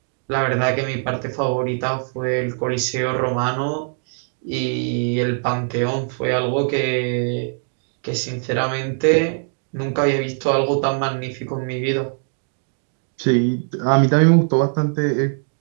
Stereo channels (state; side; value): silent; left; 58 dB below the other